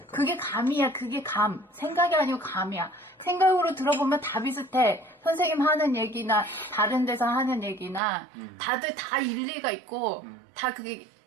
그게 감이야. 그게 감. 생각이 아니고 감이야. 생각으로 들어보면 다 비슷해. 선생님 하는 얘기나 다른 데서 하는 얘기나 다들 다 일리가 있고 다 그게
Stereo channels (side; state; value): left; drops out; at 8.0 s